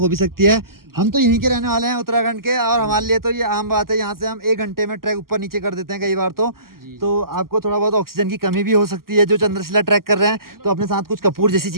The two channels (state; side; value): late; left; 0.92 ms